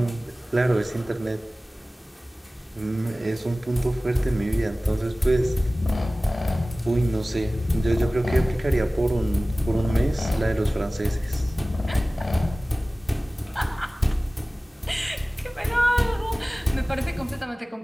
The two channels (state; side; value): normal; both; correlation 0.98